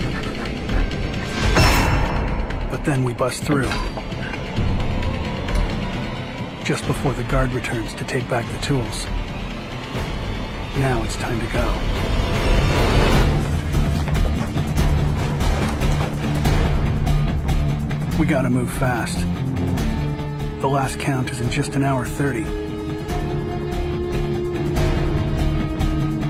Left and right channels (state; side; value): identical; both; correlation 1.00